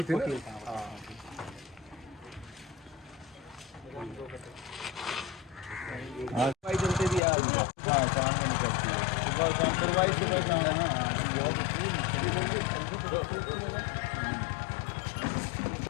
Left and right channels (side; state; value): right; drops out; at 7.2 s